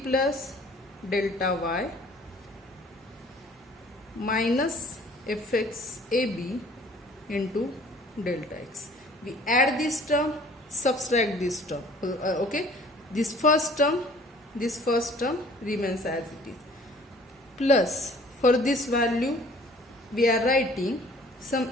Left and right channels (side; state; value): both; normal; correlation 0.53